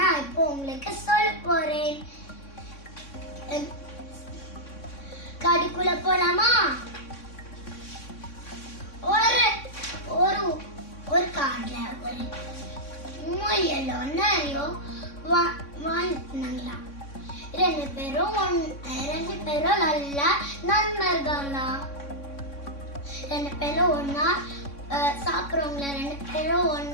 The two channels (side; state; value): right; late; 3.6 ms